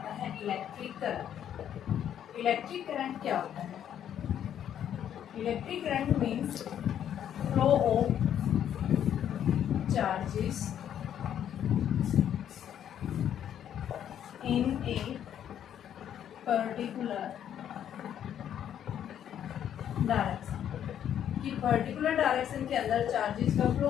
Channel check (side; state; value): right; quieter; 9.9 dB